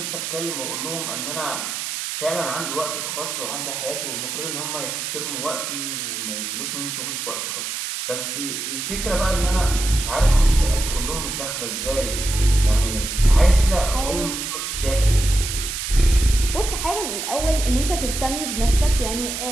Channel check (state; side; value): noise; right; hiss, 4 dB below the sound